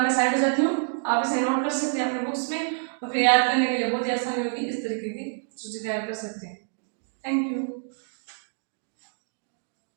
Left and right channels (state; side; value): silent; left; digital silence